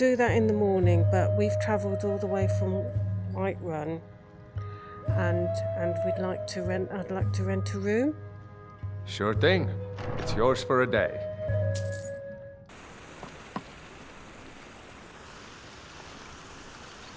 that in the morning, but we've travelled all the way from Whiterun, and I'd like to rent a room. Sure thing. It's yours for a day.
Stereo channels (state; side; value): identical; both; correlation 1.00